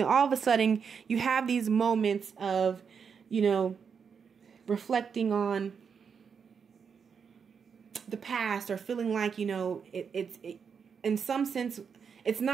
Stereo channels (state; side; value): quieter; left; 6.4 dB